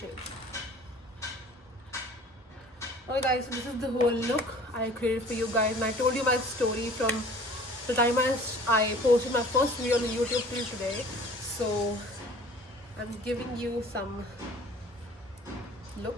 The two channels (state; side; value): normal; both; correlation 0.48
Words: Okay guys, so this is the whole look I created for you guys, and I told you my story from the time I posted my first video on YouTube till today. So I'm giving you some